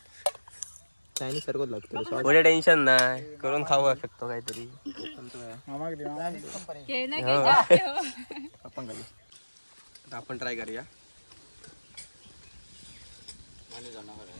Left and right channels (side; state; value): both; inverted; correlation -1.00